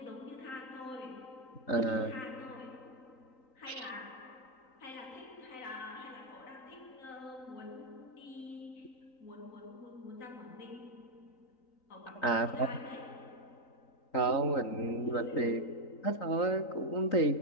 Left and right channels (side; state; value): right; late; 3.9 ms